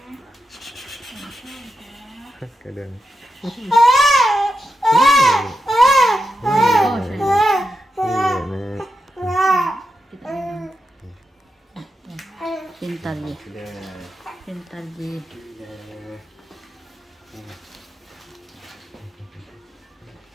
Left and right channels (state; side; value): normal; both; correlation 0.87